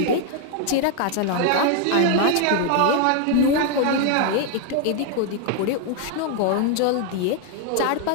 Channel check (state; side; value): different; both; correlation 0.01